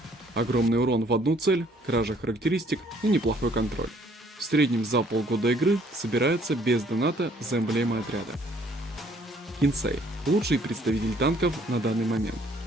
Огромный урон в одну цель, кража характеристик и неплохой контроль. В среднем за полгода игры собирается без доната за эмблемой отряда. Кинсей. Лучший представитель танков на данный момент.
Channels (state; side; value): normal; both; correlation 0.62